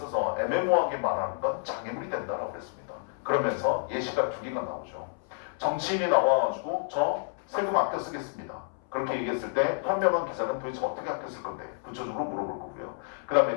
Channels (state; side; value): silent; right; 58 dB below the other